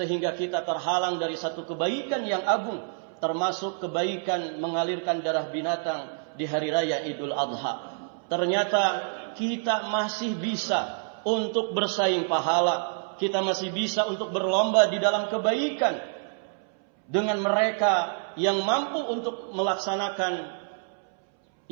kita terhalang dari satu kebaikan yang agung, termasuk kebaikan mengalirkan darah binatang di hari raya Idul Adha. Ternyata kita masih bisa untuk bersaing pahala, kita masih bisa untuk berlomba di dalam kebaikan dengan mereka yang mampu untuk melaksanakan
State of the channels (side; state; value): left; silent; 60 dB below the other